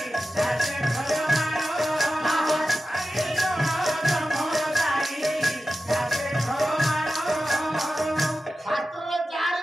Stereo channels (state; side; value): normal; both; correlation 0.93